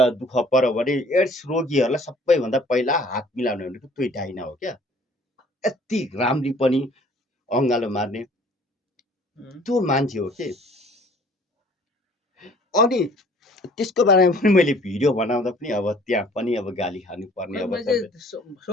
दुःख पर्यो भने एड्स रोगीहरूलाई सबैभन्दा पहिला हात मिलाउने भनेको त्यो डाइना हो क्या यति राम्री पनि अङ्गालो मार्ने त्यो मान्छे हो के अनि त्यसको बारेमा पनि मैले भिडियो बनाउँदा पनि अब त्यहाँ पनि अब गाली खानु पर्ने अब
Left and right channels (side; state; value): both; normal; correlation 0.54